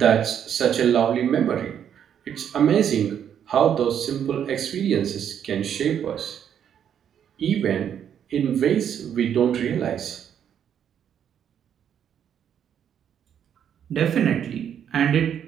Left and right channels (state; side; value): quieter; left; 8.9 dB